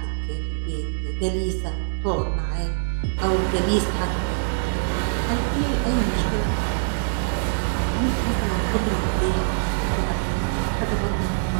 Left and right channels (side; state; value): left; silent; digital silence